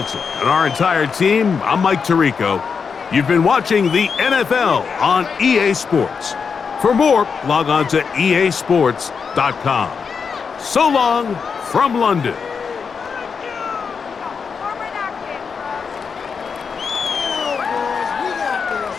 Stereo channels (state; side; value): quieter; right; 5.8 dB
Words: and our entire team. I'm Mike Tirico. You've been watching the NFL on EA Sports. For more, log on to easports.com. So long from London.